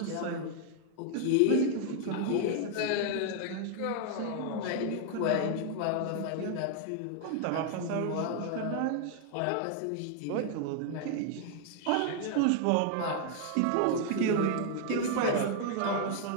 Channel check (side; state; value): both; different; correlation 0.00